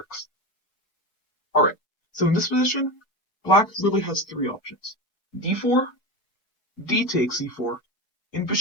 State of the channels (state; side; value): late; right; 4.7 ms